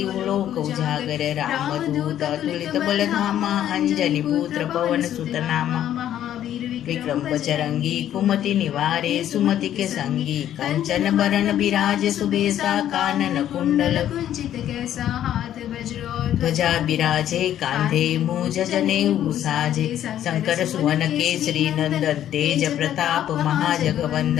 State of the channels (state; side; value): quieter; right; 11.3 dB